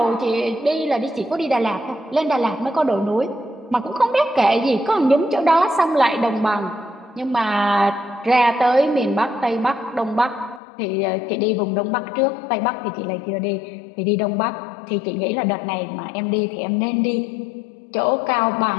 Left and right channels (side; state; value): right; drops out; at 10.6 s